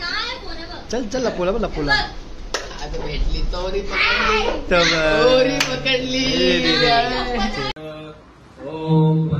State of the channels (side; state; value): both; identical; correlation 1.00